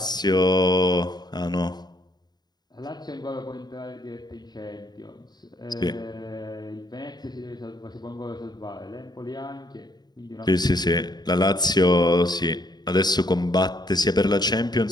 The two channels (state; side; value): late; right; 0.20 ms